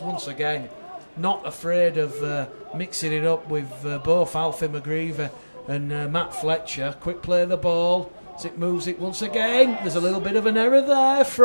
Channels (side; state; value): both; inverted; correlation -1.00